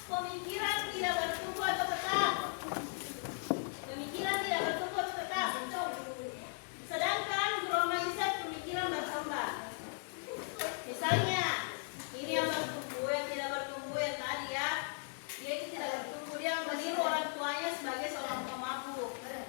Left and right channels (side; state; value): right; silent; 53 dB below the other